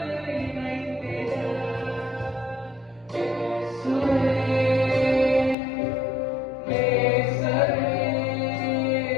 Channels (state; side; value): drops out; right; at 5.6 s